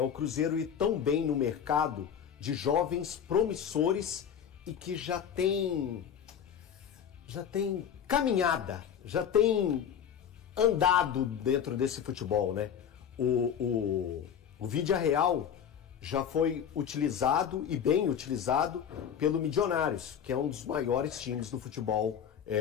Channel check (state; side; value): quieter; right; 8.4 dB